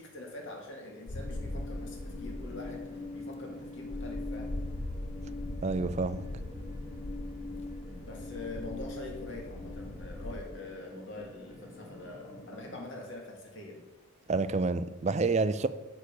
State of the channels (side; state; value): both; normal; correlation 0.47